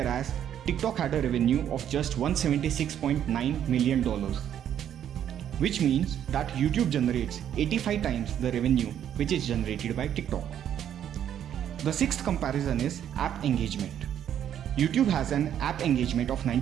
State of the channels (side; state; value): left; quieter; 9.9 dB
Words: TikTok had a revenue of just $176.9 million, which means that YouTube generates 85 times the revenue which is generated by TikTok. The sixth comparison is app engagement. YouTube has an app engagement of